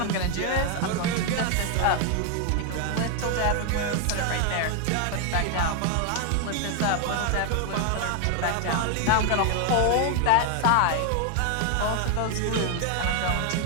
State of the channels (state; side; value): different; both; correlation 0.01